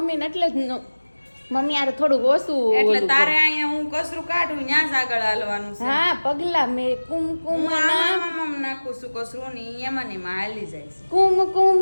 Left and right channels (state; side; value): inverted; both; correlation -1.00